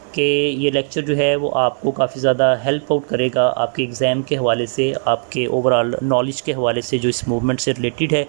कि ये लेक्चर जो है वो आपको काफ़ी ज़्यादा हेल्प आउट करेगा आपके एग्ज़ाम के हवाले से, आपके ओवरऑल नॉलेज के हवाले से जो इस मूवमेंट से रिलेटेड है.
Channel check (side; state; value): left; silent; digital silence